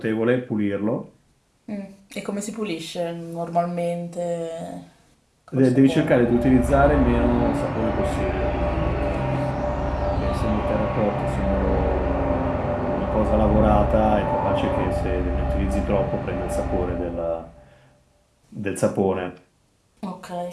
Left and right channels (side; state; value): both; identical; correlation 1.00